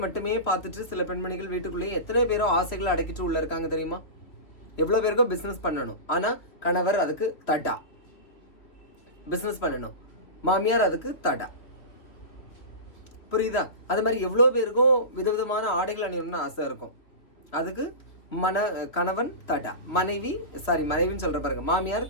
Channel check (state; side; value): late; right; 3.0 ms